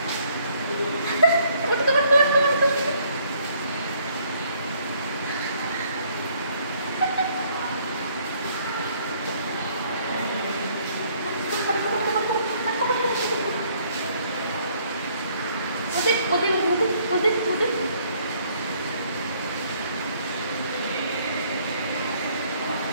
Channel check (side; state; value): both; inverted; correlation -0.64